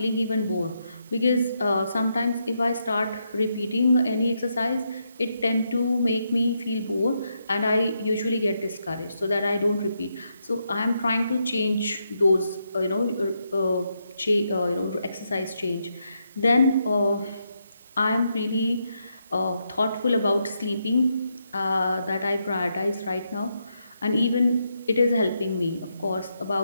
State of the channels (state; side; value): inverted; both; correlation -0.81